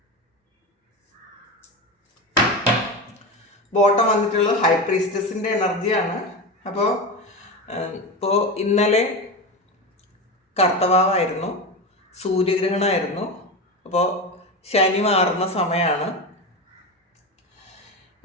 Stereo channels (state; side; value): normal; both; correlation 0.21